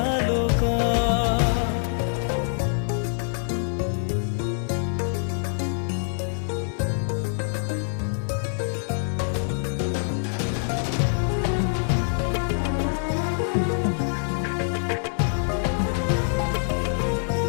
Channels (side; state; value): right; silent; digital silence